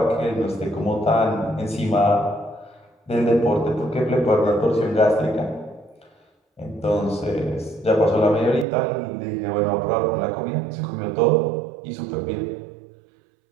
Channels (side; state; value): left; drops out; at 8.7 s